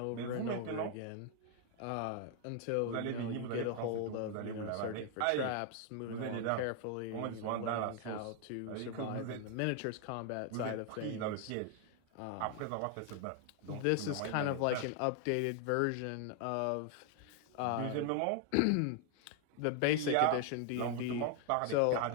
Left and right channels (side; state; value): both; different; correlation 0.00